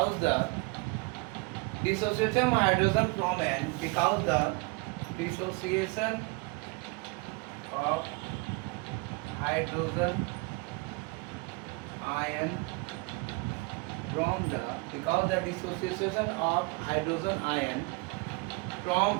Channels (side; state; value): left; quieter; 27.9 dB